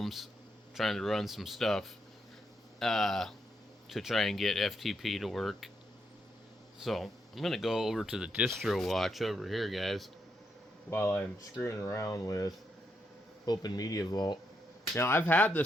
trying to run some stuff to try and get FTP to work. So, I'm going to go over to the distro watch over here, guys, while I'm screwing around with Open Media Vault. Now, I've had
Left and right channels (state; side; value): normal; both; correlation 0.80